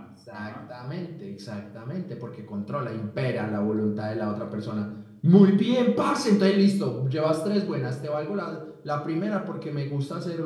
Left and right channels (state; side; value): identical; both; correlation 1.00